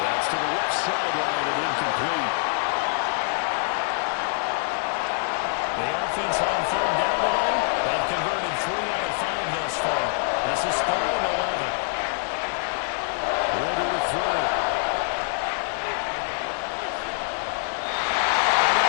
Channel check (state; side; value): silent; right; digital silence